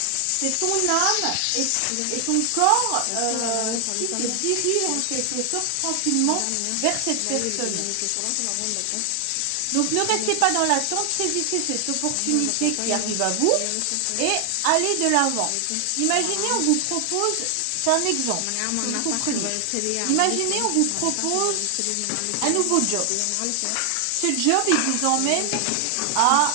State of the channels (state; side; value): different; both; correlation 0.00